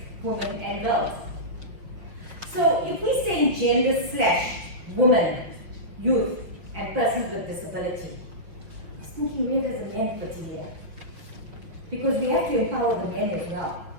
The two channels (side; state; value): left; late; 5.6 ms